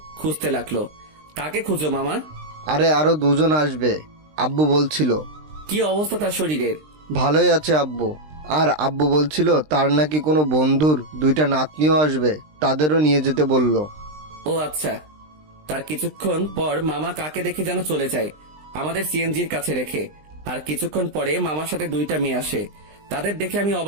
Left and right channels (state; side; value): late; left; 20 ms